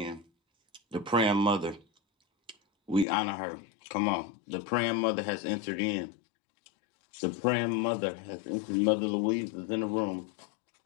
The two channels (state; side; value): drops out; right; at 3.1 s